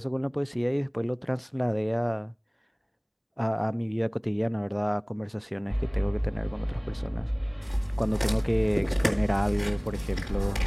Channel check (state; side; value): identical; both; correlation 1.00